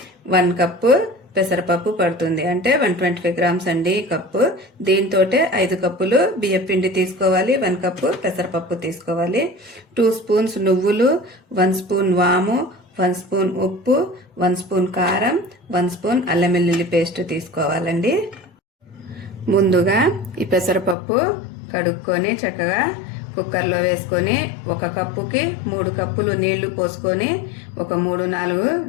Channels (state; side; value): drops out; right; at 21.0 s